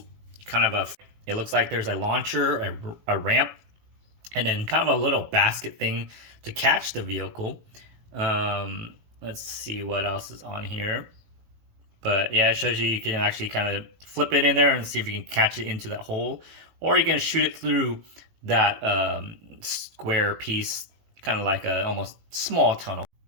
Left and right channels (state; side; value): late; left; 18 ms